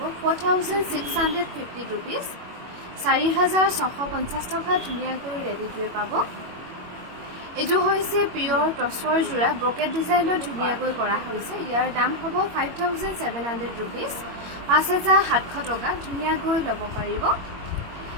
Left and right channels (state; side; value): late; left; 21 ms